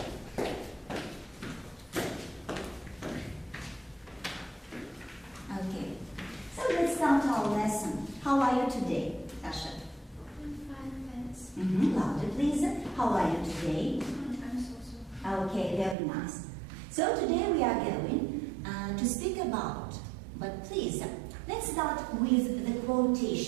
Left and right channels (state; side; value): drops out; left; at 16.0 s